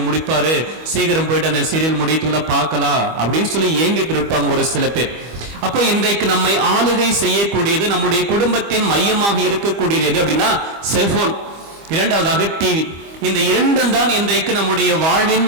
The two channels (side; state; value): left; late; 25 ms